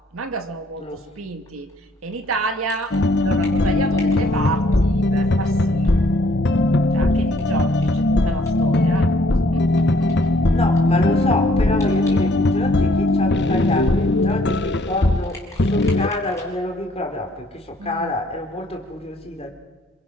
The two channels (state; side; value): normal; both; correlation 0.64